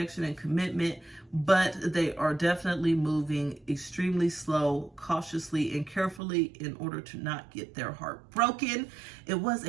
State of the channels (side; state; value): left; drops out; at 6.2 s